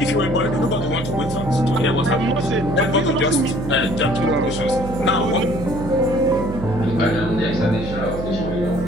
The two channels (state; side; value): noise; right; hum, 8 dB below the sound